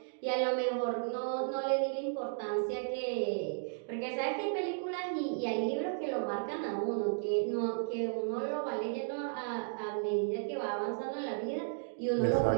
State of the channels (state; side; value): silent; left; digital silence